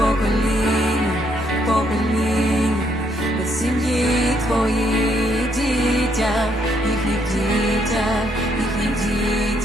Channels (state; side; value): normal; both; correlation 0.72